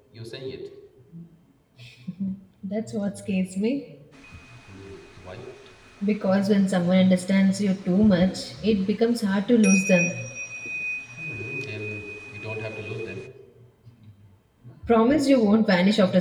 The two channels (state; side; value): identical; both; correlation 1.00